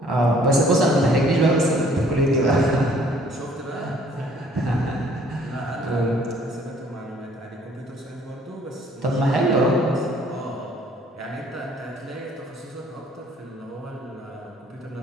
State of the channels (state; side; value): normal; both; correlation 0.59